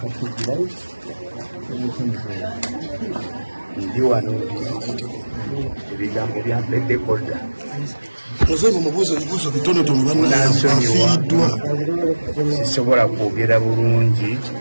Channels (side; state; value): both; inverted; correlation -1.00